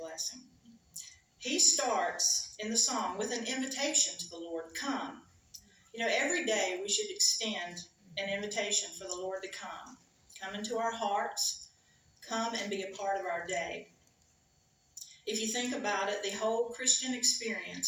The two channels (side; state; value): both; identical; correlation 1.00